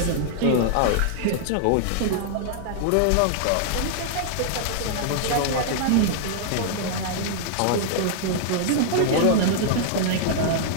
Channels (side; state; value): both; different; correlation -0.01